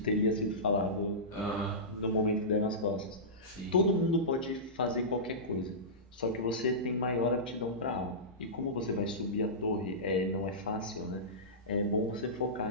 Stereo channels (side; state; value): both; normal; correlation -0.18